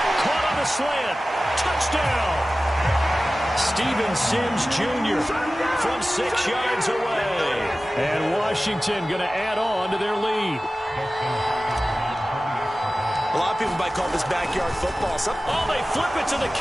Caught on a slant. Touchdown. Steven Sims Jr. from 6 yards away. And Washington going to add on to their lead. A lot of people might call this backyard football. Oh, they flip it to the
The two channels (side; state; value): both; normal; correlation 0.96